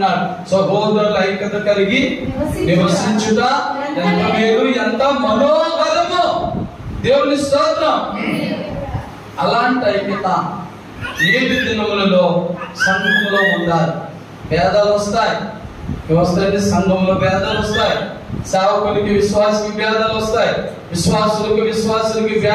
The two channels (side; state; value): both; identical; correlation 1.00